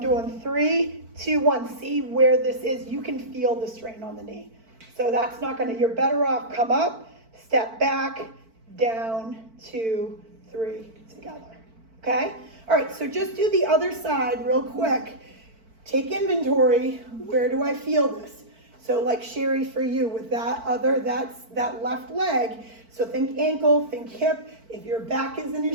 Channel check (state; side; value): late; left; 4.5 ms